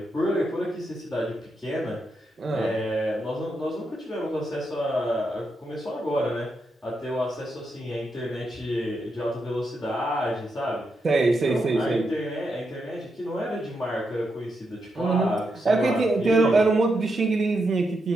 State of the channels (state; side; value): normal; both; correlation 0.84